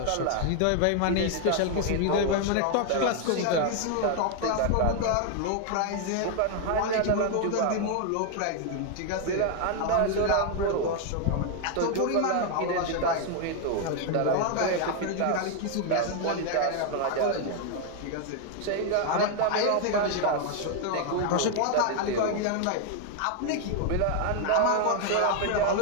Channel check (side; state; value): both; different; correlation 0.00